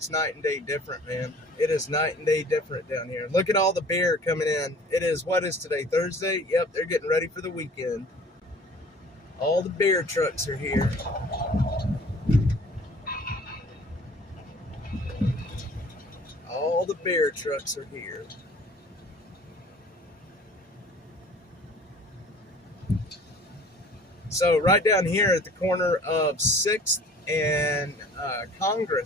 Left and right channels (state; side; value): normal; both; correlation 0.49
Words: night and day different, man. It is night and day different down here. Look at all the beer coming in. It is, what is today, Thursday? Yep, they're getting ready for the weekend. All the beer trucks are here. All the beer trucks are here. So right down here at the corner of 6th and